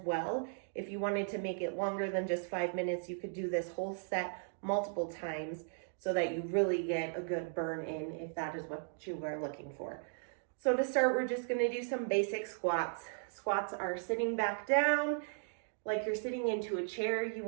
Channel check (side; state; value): left; silent; digital silence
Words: well. If you wanted to make it longer than just 5 minutes, you could do this whole set multiple times so that you really get a good burn in if that is what you are looking for. So to start, we're just gonna do some basic squats. Squats are sitting back down, like you're sitting into a chair. You